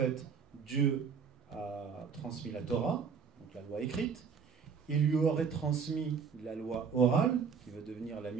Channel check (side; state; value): left; quieter; 6.2 dB